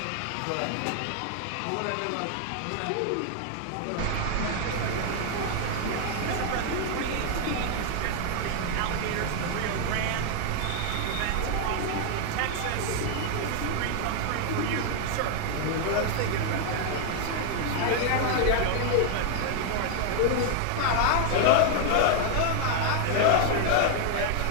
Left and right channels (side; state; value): both; different; correlation 0.00